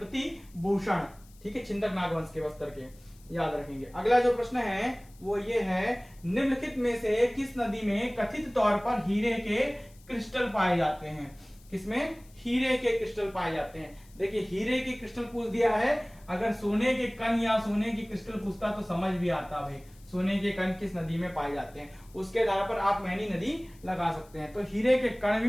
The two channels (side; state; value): left; noise; hiss, 27 dB below the sound